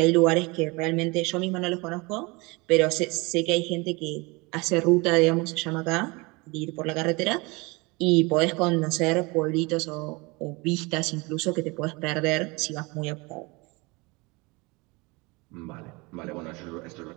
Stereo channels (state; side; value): quieter; left; 26.2 dB